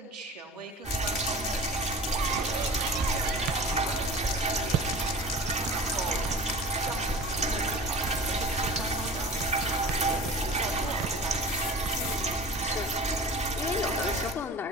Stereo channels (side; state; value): both; normal; correlation 0.37